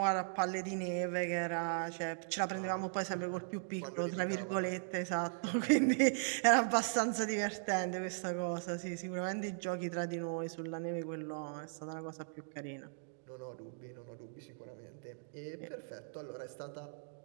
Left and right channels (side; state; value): left; silent; digital silence